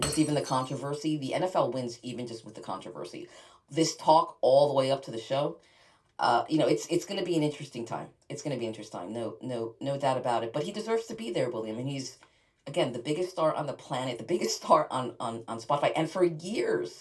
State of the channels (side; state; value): both; identical; correlation 1.00